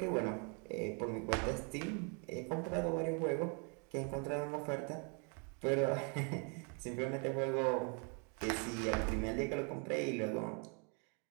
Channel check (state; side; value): quieter; left; 37.0 dB